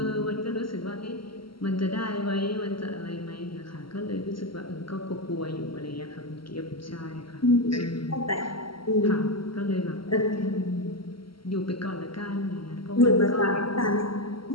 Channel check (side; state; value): right; late; 0.74 ms